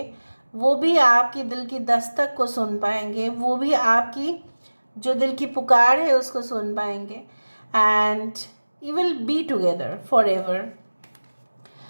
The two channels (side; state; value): both; inverted; correlation -1.00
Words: वो भी आपकी दिल की दस्तक को सुन पाएंगे, वो भी आपकी जो दिल की पुकार है उसको सुन पाएंगे and you will be together forever.